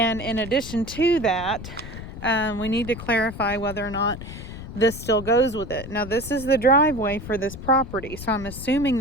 in addition to that, we need to clarify whether or not this still goes with it. Now, this is the driveway for this property, so I'm assuming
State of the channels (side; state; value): left; noise; rumble, 11 dB below the sound